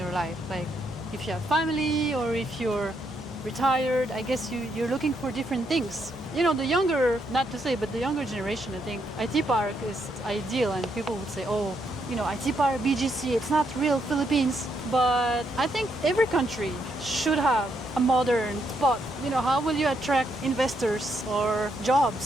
life. Like if you have family or if you're retired, I guess you're looking for different things. The younger, not to say, but the younger generation, I think IT Park is ideal, and people would say, oh, IT Park, BGC, it's not real Philippines. But I think every country should have a modern spot. How will you attract investors or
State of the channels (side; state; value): both; normal; correlation 0.77